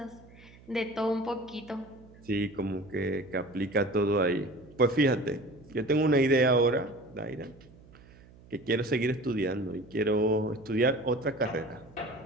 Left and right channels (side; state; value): right; noise; hum, 23 dB below the sound